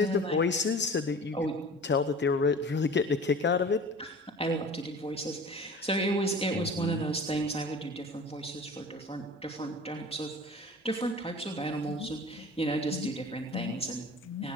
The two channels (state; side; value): normal; both; correlation 0.41